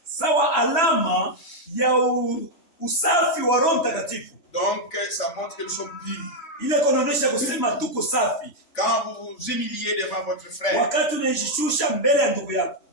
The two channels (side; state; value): right; late; 3.1 ms